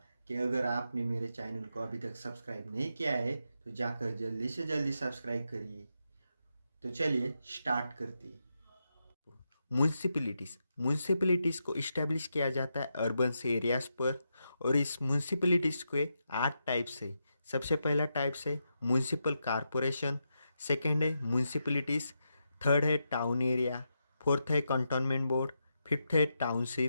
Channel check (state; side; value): inverted; both; correlation -0.85